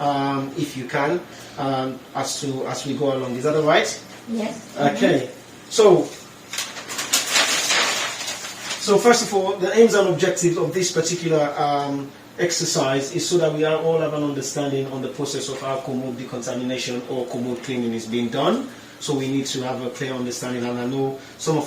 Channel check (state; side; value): identical; both; correlation 1.00